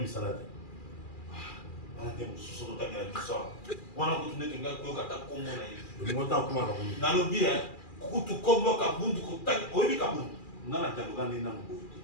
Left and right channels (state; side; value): late; right; 2.4 ms